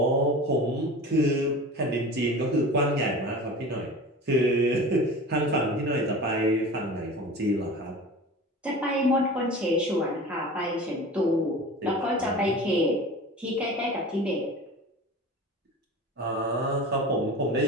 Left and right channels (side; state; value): both; normal; correlation 0.36